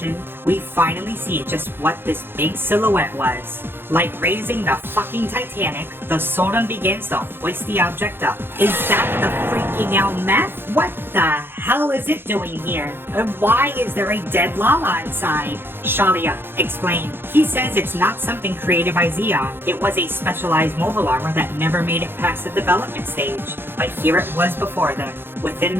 we finally see just what this big silhouette was. Like raising the fucking Titanic, the Soren begins to hoist the object up. Is that the freaking out meth? What the hell is it doing here? And why is there a dead Lala inside? Shalia, explain. He says it's not something created by Zeon. It was a specialized mobile armor that never made it past the development stage. But here it was before them. Within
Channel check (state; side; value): late; left; 0.10 ms